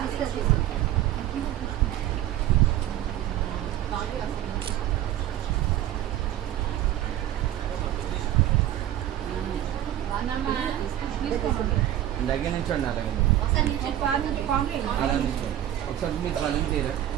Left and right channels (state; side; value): quieter; left; 12.4 dB